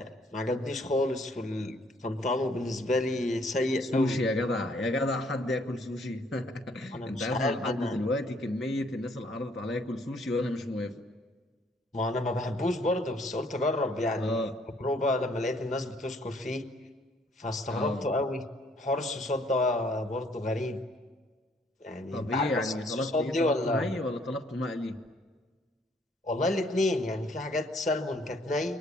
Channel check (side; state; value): both; normal; correlation 0.64